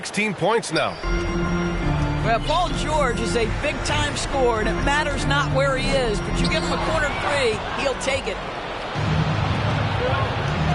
points now. Well, Paul George is a big-time scorer, and it matters not where he is, but you give him a corner three, he'll take it.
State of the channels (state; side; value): identical; both; correlation 1.00